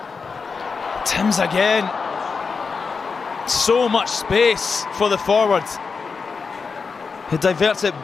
Timms again. So much space for the forward. He diverts it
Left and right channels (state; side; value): quieter; right; 5.0 dB